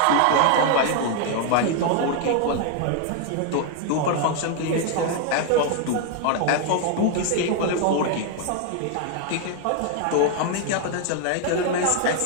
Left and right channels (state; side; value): different; both; correlation 0.00